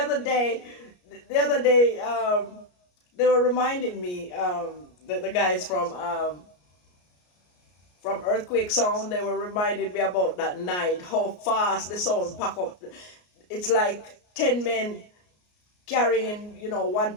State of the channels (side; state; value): right; late; 33 ms